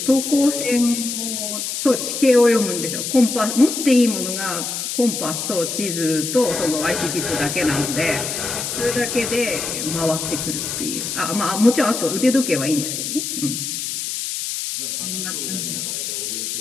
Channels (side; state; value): left; noise; hiss, 4 dB below the sound